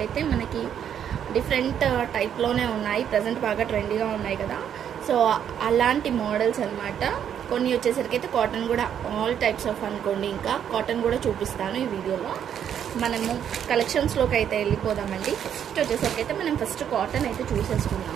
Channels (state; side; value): quieter; left; 9.1 dB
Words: అయితే మనకి డిఫరెంట్ టైప్లోనే ఉన్నాయి. ప్రజెంట్ బాగా ట్రెండీగా ఉన్నాయి కదా, సో అలాంటి మోడల్స్ అనమాట. కొన్ని వచ్చేసరికి అయితే కాటన్ కూడా ఆల్ టైప్స్ ఆఫ్ అనుకోండి. ఇంకా కాటన్ కూడా చూపిస్తాను ఈ వీడియోలో. మనము కలెక్షన్స్లోకి అయితే వెళ్ళిపోదామండి. ఫస్ట్ వచ్చేసరికి అయితే మనం ఫస్ట్ కాటన్ అయితే